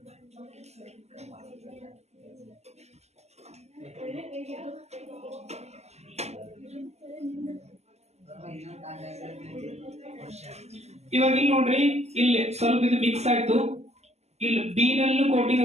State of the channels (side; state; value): left; late; 0.32 ms